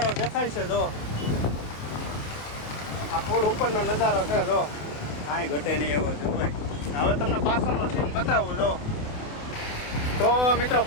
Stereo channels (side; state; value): right; late; 28 ms